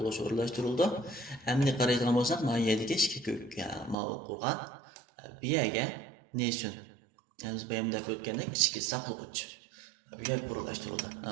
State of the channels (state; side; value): drops out; left; at 4.0 s